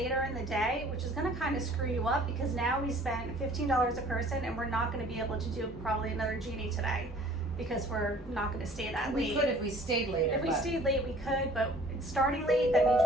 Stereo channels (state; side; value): normal; both; correlation 0.52